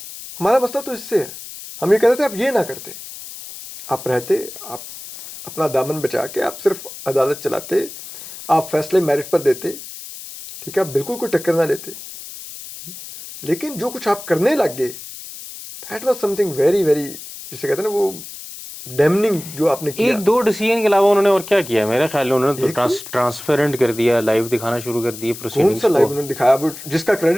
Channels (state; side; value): noise; left; hiss, 13 dB below the sound